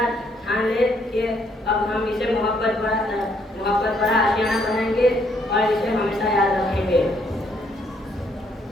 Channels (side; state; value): both; normal; correlation 0.70